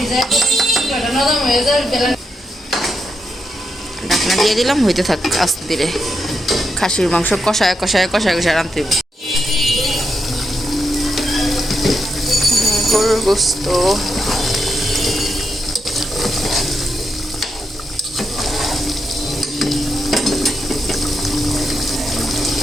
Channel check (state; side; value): normal; both; correlation 0.83